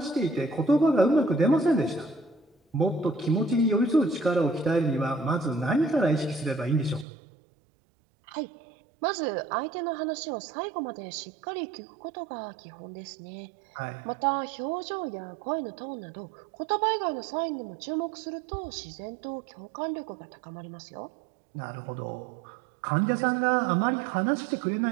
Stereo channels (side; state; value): left; drops out; at 7.1 s